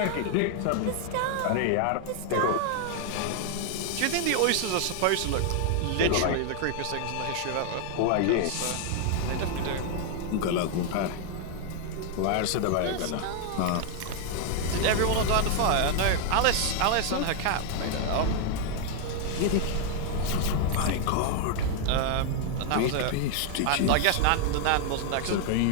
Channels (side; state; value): both; different; correlation 0.00